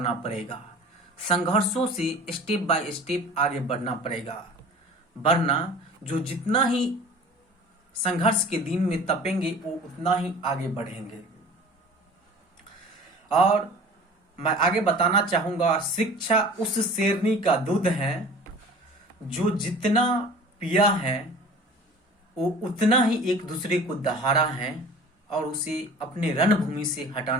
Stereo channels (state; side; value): normal; both; correlation 0.43